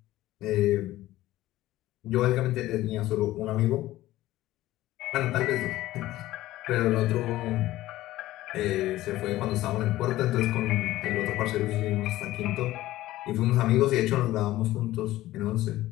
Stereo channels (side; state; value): right; quieter; 15.9 dB